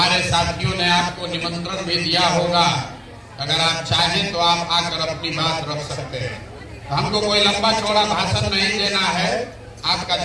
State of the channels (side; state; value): both; identical; correlation 1.00